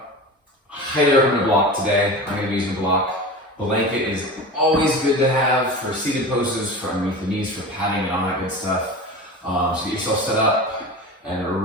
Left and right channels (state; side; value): normal; both; correlation 0.31